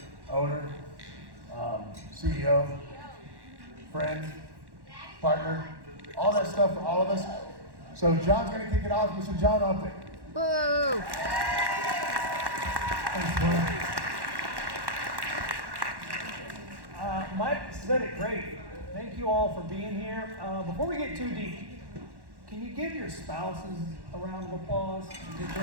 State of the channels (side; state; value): left; late; 1.1 ms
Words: owner, CEO, friend, partner, all that stuff for all of us. So John's going to kick it off. Mr. John Upton. Boo! Thanks, Mike said it great. Thank you all for being here. Before we get too deep, can you give your spouses a round of applause?